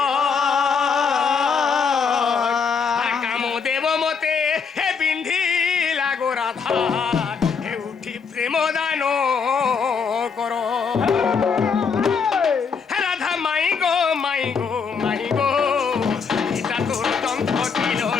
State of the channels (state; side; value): quieter; right; 5.8 dB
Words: আর কামো দেব মতে হে বিন্ধি লাগো রাধা হে উঠি প্রেম দান করো হে রাধা মাই গো মাই গো মাই গো এটা তোর যন্ত্র